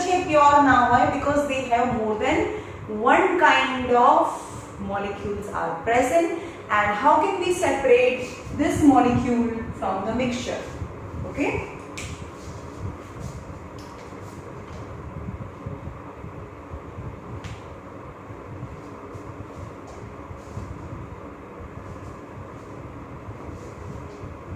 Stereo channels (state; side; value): identical; both; correlation 1.00